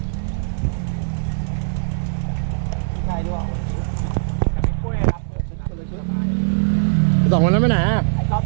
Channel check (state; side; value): silent; left; 59 dB below the other